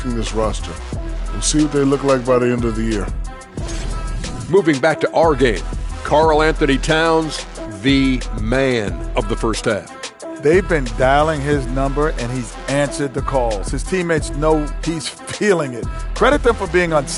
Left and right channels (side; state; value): both; identical; correlation 1.00